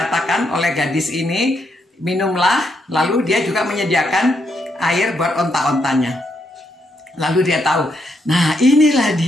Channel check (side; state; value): both; normal; correlation 0.78